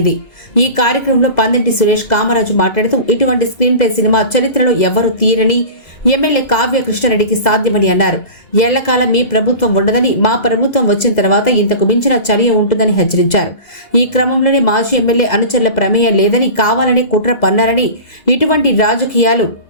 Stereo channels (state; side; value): late; right; 2.0 ms